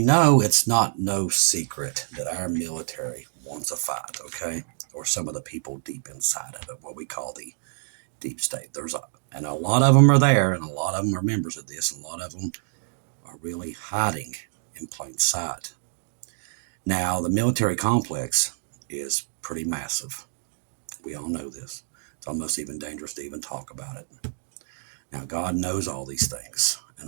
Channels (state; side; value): silent; left; digital silence